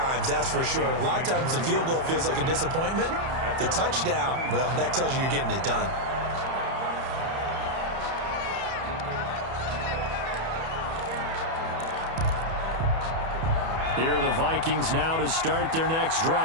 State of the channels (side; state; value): left; late; 31 ms